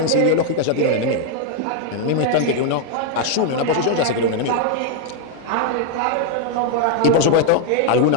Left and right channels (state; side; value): different; both; correlation 0.00